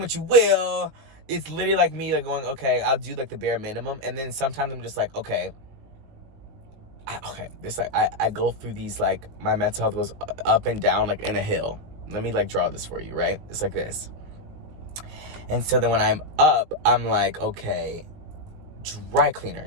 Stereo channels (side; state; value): left; late; 19 ms